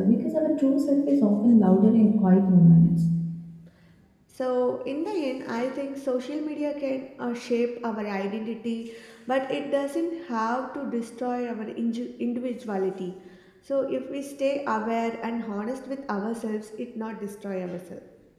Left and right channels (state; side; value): identical; both; correlation 1.00